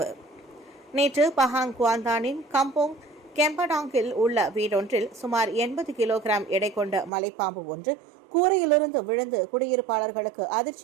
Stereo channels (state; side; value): drops out; left; at 7.1 s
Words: நேற்று பஹாங் குவாந்தானின் கம்போங் கெம்படாங்கில் உள்ள வீடொன்றில் சுமார் 80 கிலோகிராம் எடை கொண்ட மலைப்பாம்பு ஒன்று கூரையிலிருந்து விழுந்து குடியிருப்பாளர்களுக்கு